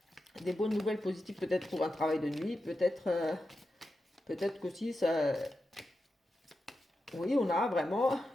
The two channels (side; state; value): both; normal; correlation 0.90